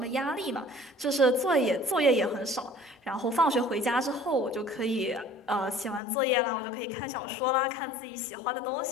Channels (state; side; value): drops out; right; at 6.0 s